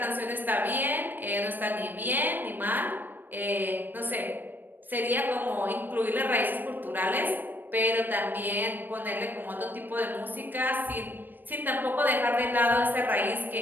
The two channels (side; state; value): left; late; 0.092 ms